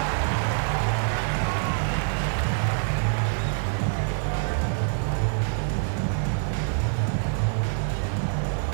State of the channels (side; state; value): left; silent; 61 dB below the other